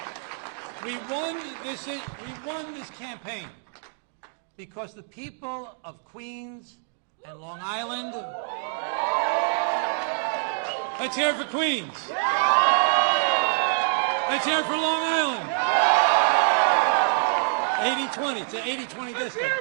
We won this campaign because the people of Queens and Long Island... Let's hear it for Queens. Let's hear it for Long Island. 80-20. It's an 80-20 district.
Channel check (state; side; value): silent; left; digital silence